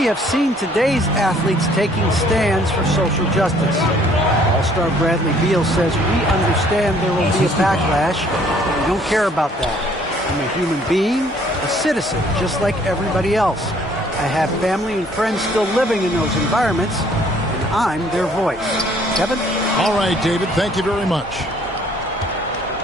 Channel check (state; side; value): normal; both; correlation 0.60